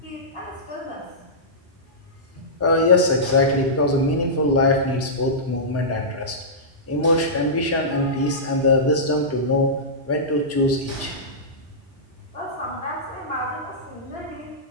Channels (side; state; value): both; normal; correlation -0.16